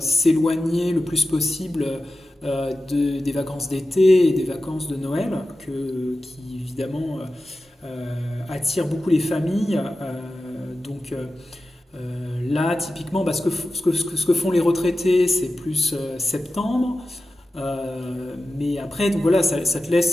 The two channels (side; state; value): both; normal; correlation 0.93